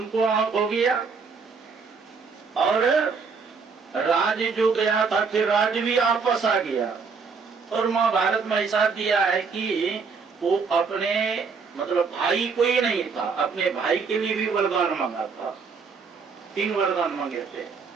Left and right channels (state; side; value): quieter; left; 5.2 dB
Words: आंख हो गया, और राज जो गया था फिर राज भी वापस आ गया। और महाभारत में ऐसा दिया है कि वो अपने मतलब भाई कोई नहीं था, अपने भाई के लिए भी वरदान मांगा था, 3 वरदान मांगे थे।